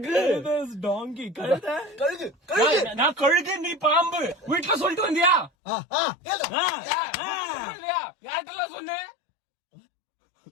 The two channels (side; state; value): right; drops out; at 5.5 s